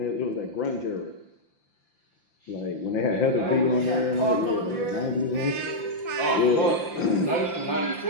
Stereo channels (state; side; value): late; right; 5.8 ms